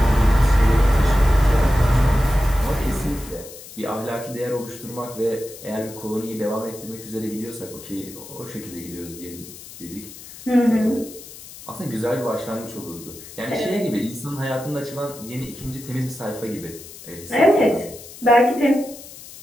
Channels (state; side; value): noise; left; hiss, 16 dB below the sound